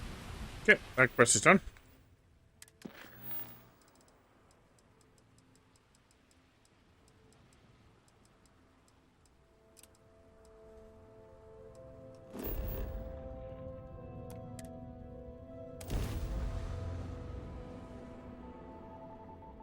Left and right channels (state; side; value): identical; both; correlation 1.00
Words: Okay, that quest is done.